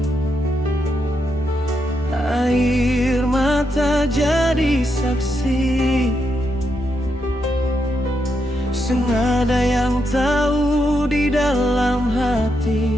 air mata jadi saksi. Sengada yang tahu di dalam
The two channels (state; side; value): normal; both; correlation 0.81